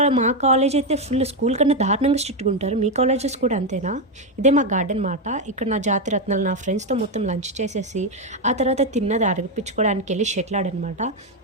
మా కాలేజ్ అయితే ఫుల్ స్కూల్ కన్నా దారుణంగా స్ట్రిక్ట్గా ఉంటారు. మీ కాలేజెస్ కూడా అంతేనా? ఇదే మా గార్డెన్ మాట. ఇక్కడ నా జాతి రత్నాలు నా ఫ్రెండ్స్తో మొత్తం లంచ్ చేసేసి ఆ తర్వాత తిన్నది అడిపించుకోవడానికి వెళ్ళి షటిల్ ఆడనమాట.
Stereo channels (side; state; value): both; normal; correlation 0.06